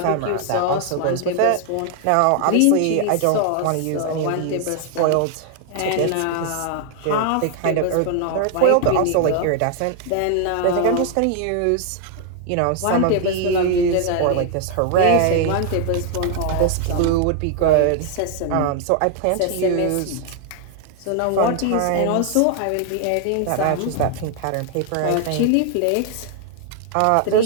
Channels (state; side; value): different; both; correlation 0.00